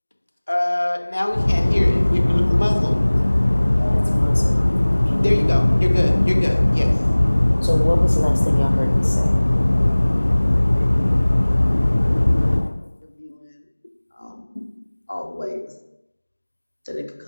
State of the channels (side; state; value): both; inverted; correlation -1.00